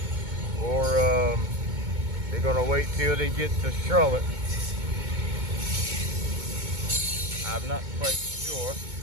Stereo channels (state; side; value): late; left; 2.2 ms